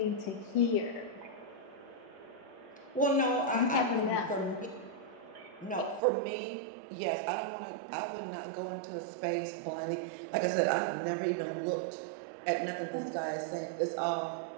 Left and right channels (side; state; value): left; drops out; at 6.0 s